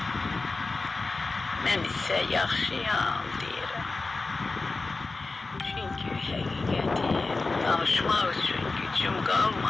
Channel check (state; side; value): quieter; right; 3.6 dB